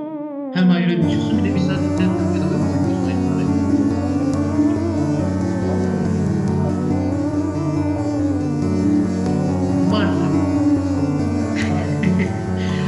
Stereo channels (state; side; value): identical; both; correlation 1.00